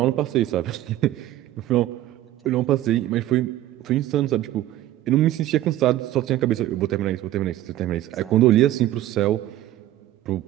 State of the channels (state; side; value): quieter; left; 14.1 dB